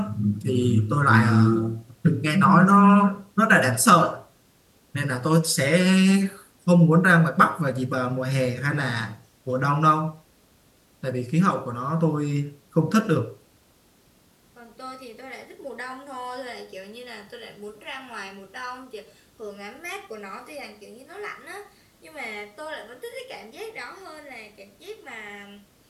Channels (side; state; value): both; identical; correlation 1.00